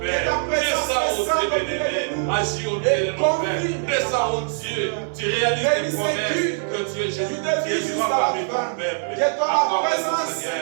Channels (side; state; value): left; silent; 57 dB below the other